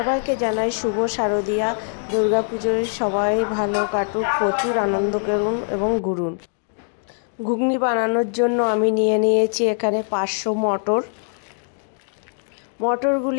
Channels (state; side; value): silent; right; digital silence